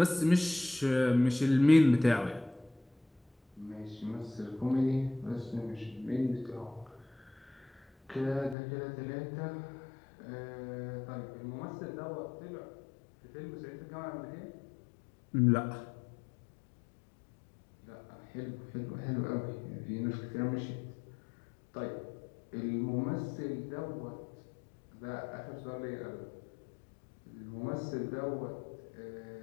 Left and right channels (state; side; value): drops out; right; at 8.6 s